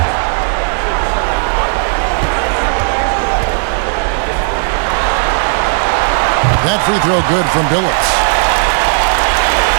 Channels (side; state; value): left; silent; digital silence